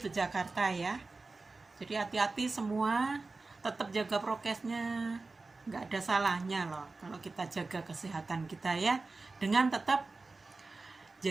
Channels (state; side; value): quieter; left; 3.6 dB